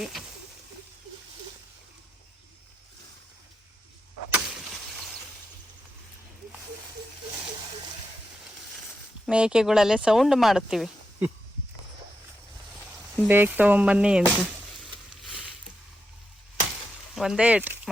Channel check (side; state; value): both; normal; correlation 0.86